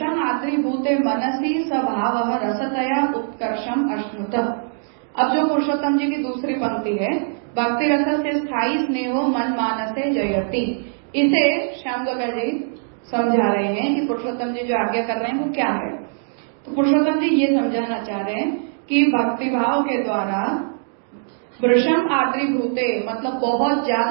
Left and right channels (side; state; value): left; silent; digital silence